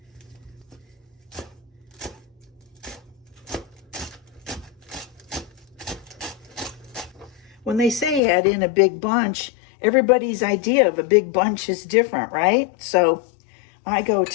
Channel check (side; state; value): right; drops out; at 8.2 s